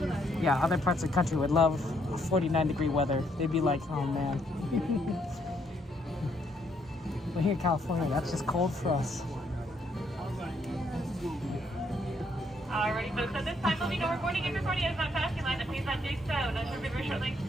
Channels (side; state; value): both; normal; correlation 0.71